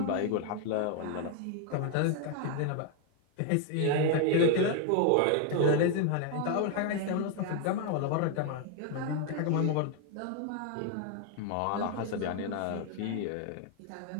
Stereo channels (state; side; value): different; both; correlation 0.00